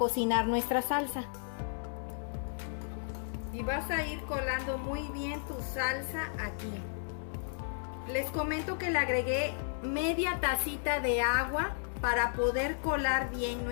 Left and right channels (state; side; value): silent; right; 55 dB below the other